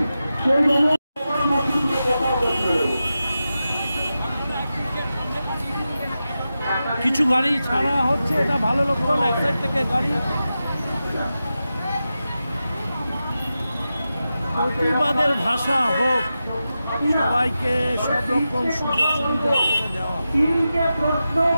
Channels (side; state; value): both; inverted; correlation -0.91